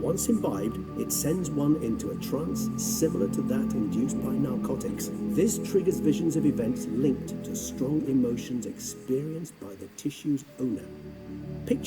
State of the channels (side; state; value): both; identical; correlation 1.00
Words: imbibed, it sends one into a trance similar to that induced by narcotics. This triggers visions of events linked to strong emotions experienced by the tissue's owner.